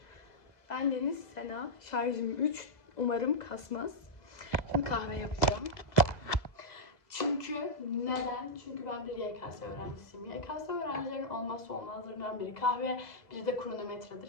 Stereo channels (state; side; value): late; right; 2.0 ms